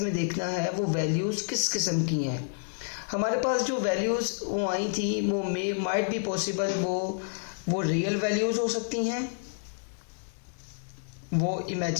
में देखना है वो वैल्यूज़ किस किस्म की हैं। हमारे पास जो वैल्यूज़ वो आई थी वो मे माइट बी पॉसिबल वो रियल वैल्यूज़ हो सकती हैं, वो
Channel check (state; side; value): silent; right; digital silence